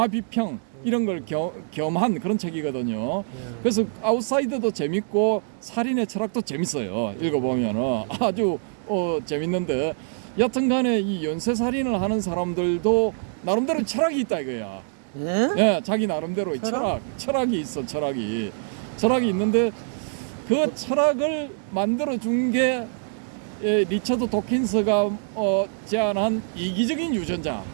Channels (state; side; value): silent; left; digital silence